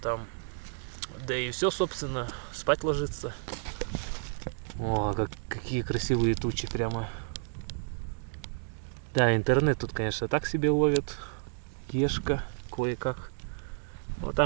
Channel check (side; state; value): left; silent; 57 dB below the other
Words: Да и все, собственно, спать ложиться. О, какие красивые тучи прямо. Да, интернет тут, конечно, так себе ловит. Ешка кое-как. Вот